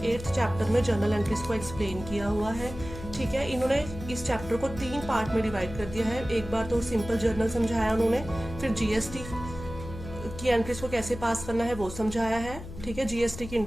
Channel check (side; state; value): left; noise; hum, 12 dB below the sound